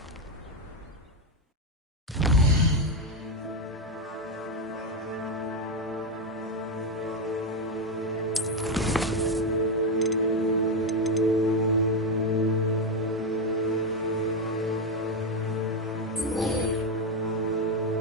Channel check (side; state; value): both; normal; correlation 0.07